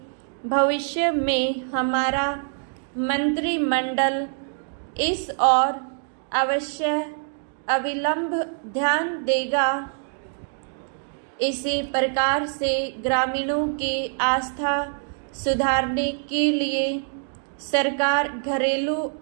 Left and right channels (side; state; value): left; silent; 62 dB below the other